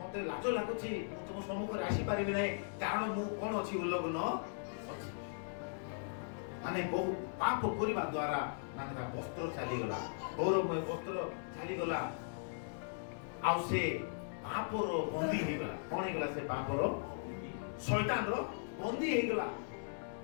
ଲାଜ ଲାଗୁଛି, ମୁଁ ତୁମ ସମ୍ମୁଖରେ ଆସିପାରିବି ନାହିଁ, କାରଣ ମୁଁ କଣ ଅଛି? ଉଲ୍ଲଗ୍ନ ଅଛି। ମାନେ ବହୁ ପାପ କରିବା ଦ୍ୱାରା ମାନେ ତା ବସ୍ତ୍ର ଚାଲିଗଲା, ଗୌରବମୟ ବସ୍ତ୍ର ଚାଲିଗଲା, ଆଉ ସେ ପାପର ବନ୍ଦୀ ହେଇଗଲା। କଣ ହେଇଗଲା? ସେ ପାପର, ଶୈତାନର ବନ୍ଦୀ ହେଇଗଲା।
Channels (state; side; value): silent; right; digital silence